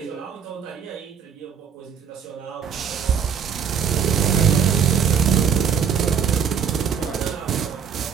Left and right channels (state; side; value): quieter; left; 7.4 dB